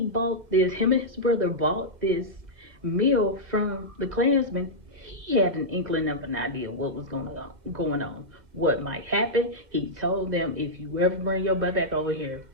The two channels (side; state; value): left; late; 2.0 ms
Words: bought this. Him and his brother bought this meal from the Klansman. He had an inkling of an idea what was going on, what might happen. He told them, "If you ever bring your butt back over here,